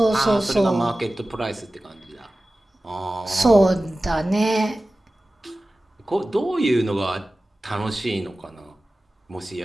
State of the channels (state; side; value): normal; both; correlation 0.96